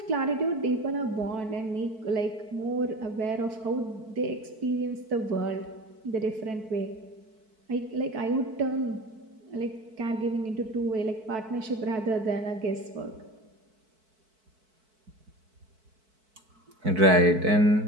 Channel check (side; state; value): left; late; 4.6 ms